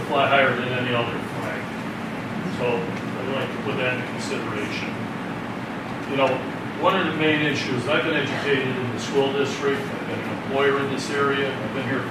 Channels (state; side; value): identical; both; correlation 1.00